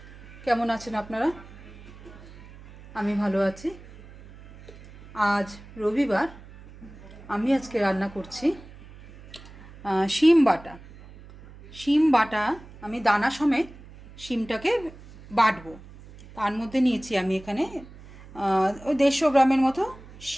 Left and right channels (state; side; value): noise; right; hum, 19 dB below the sound